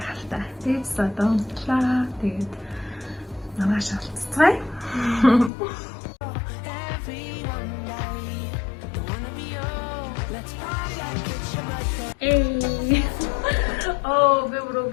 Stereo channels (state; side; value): drops out; right; at 5.5 s